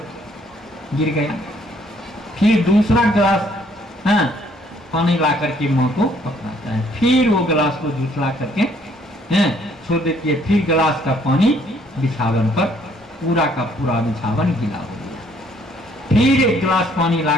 गिर गया। फिर दूसरा गिलास पानी ला करके माँ को पकड़ाता है, फिर वो गिलास को झुसला करके छोड़ देती है, फिर गिलास का पानी बिछावन पर पूरा का पूरा बिछावन गीला हो गया। फिर एक गिलास पानी ला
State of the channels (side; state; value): both; normal; correlation 0.64